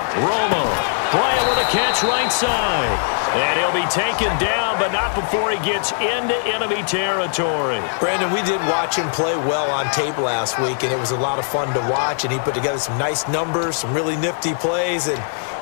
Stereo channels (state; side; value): silent; right; digital silence